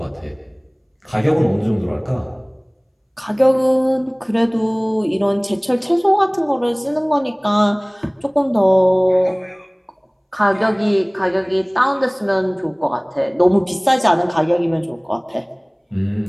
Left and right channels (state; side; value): identical; both; correlation 1.00